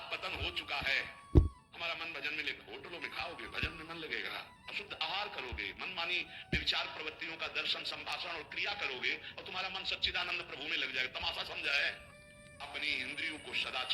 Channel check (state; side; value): identical; both; correlation 1.00